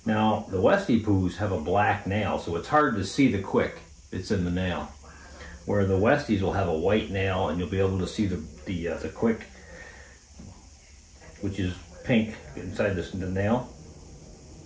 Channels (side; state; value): both; identical; correlation 1.00